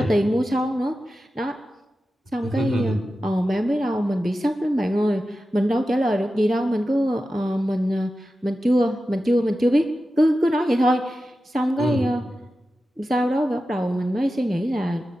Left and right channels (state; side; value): normal; both; correlation 0.93